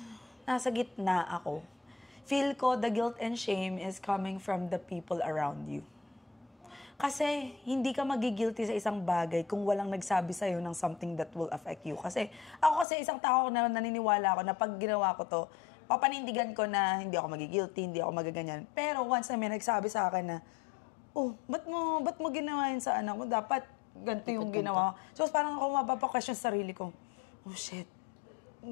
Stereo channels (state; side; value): drops out; right; at 12.9 s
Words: nasa gitna ako. Feel ko the guilt and shame is coming from the people around you. Kasi hindi ka magigilty sa isang bagay kung walang nagsabi sa'yo ng something that will affect you. Kasi ako isang tao na naniniwala ako na pag ginawa ko to, papanindigan ko na hindi ako magigilty, hindi ako magaganyan. Pero once na may nagsabi sa akin na, ba't mo ginawa yun sa anak mo? Dapat ganito yung ginawa. So parang ako mapapa-question sa sarili ko, shit.